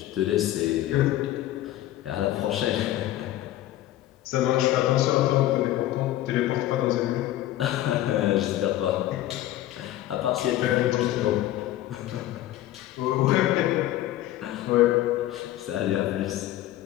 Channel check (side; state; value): right; quieter; 14.2 dB